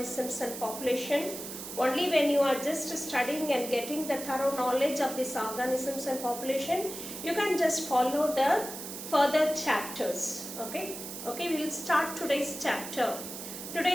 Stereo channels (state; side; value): noise; right; hiss, 9 dB below the sound